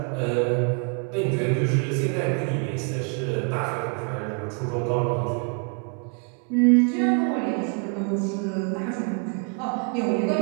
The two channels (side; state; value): left; quieter; 36.8 dB